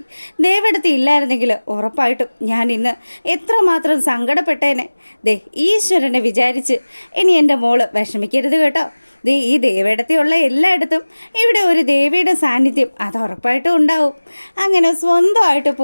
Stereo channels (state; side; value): inverted; both; correlation -1.00